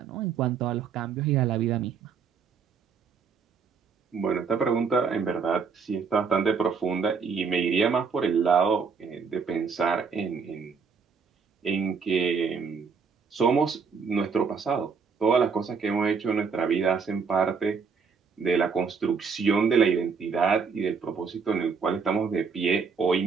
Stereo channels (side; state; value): left; quieter; 5.6 dB